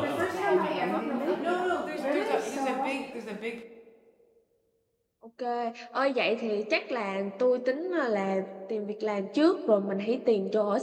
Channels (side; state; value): both; identical; correlation 1.00